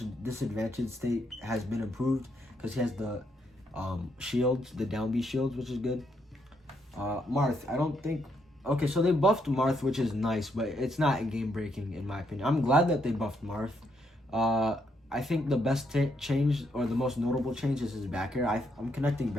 disadvantage state has been improved because he has the shields, the down B shields, which is good. Marth, I don't think... Okay, so they buffed Marth, which is nice, but it's not game breaking in my opinion. I'm glad that they buffed Marth. I think the best change, or the most notable change, is his back air. I'm connecting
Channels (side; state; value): both; normal; correlation 0.75